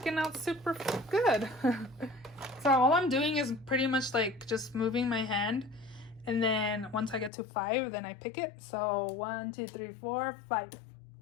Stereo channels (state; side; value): drops out; right; at 7.3 s